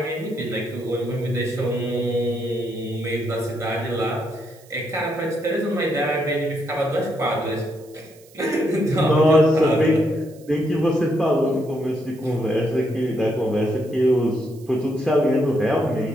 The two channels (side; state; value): right; noise; hiss, 27 dB below the sound